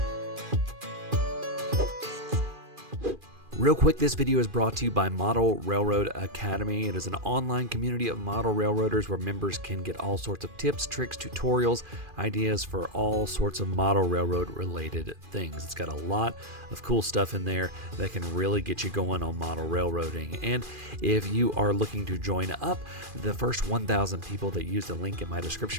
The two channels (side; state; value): left; late; 2.4 ms